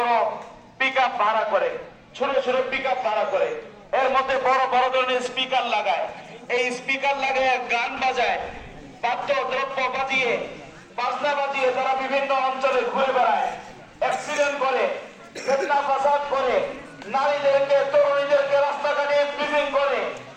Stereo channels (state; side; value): identical; both; correlation 1.00